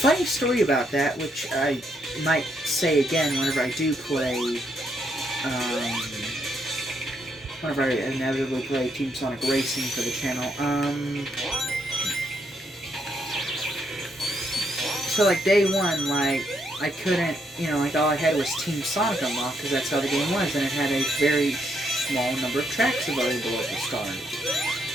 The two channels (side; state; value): both; normal; correlation 0.75